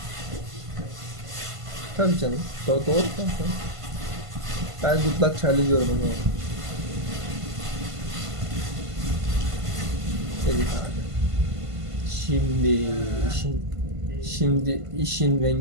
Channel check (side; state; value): left; late; 1.5 ms